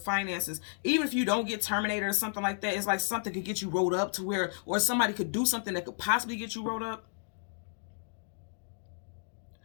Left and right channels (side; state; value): right; silent; digital silence